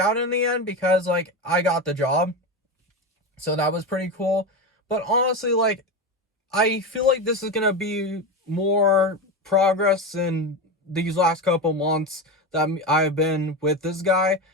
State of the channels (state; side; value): normal; both; correlation 0.19